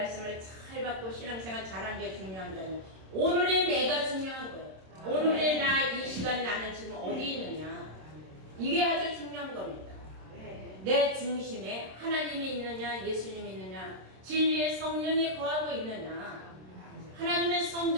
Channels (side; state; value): left; late; 26 ms